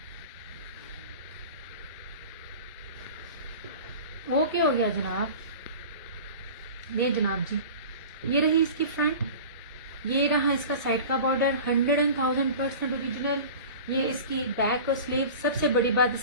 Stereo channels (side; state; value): both; inverted; correlation -0.37